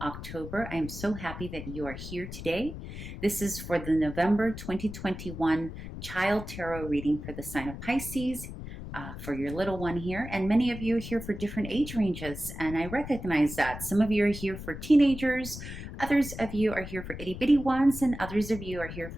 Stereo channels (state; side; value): noise; left; rumble, 10 dB below the sound